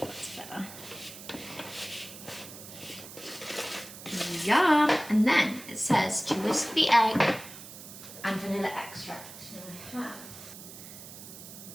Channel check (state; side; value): noise; right; hiss, 14 dB below the sound